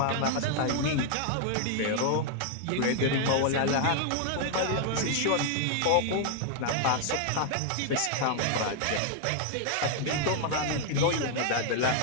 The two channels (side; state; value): both; different; correlation 0.00